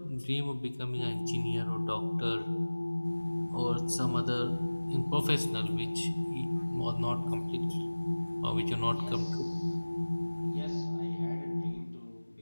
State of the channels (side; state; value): both; inverted; correlation -1.00